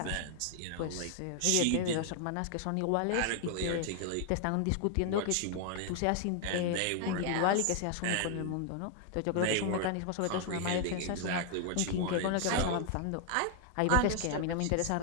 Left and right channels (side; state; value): both; different; correlation 0.00